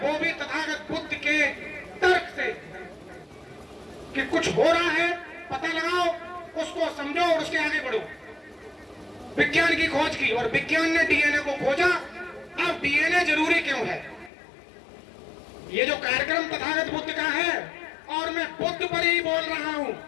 भी तथागत बुद्ध के तर्क से कि कुछ हो रहा है, पता लगाओ, उसको समझो और उसके आगे बढ़ो। विज्ञान की खोज की और विज्ञान ने डीएनए को खोजा। अब डीएनए जरूरी क्यों है? ये जो कार्यक्रम तथागत बुद्ध का है और मैं बुद्ध पर ही बोल रहा हूं,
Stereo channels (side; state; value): right; drops out; at 14.3 s